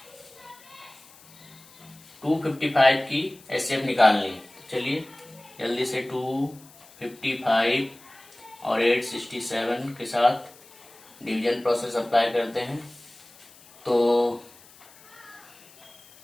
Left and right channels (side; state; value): left; noise; hiss, 24 dB below the sound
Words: 255 की एचसीएफ निकालनी है। चलिए जल्दी से 255 और 867 के साथ डिवीजन प्रोसेस अप्लाई करते हैं। तो